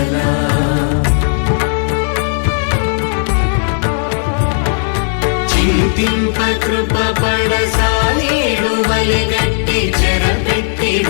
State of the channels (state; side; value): silent; right; 63 dB below the other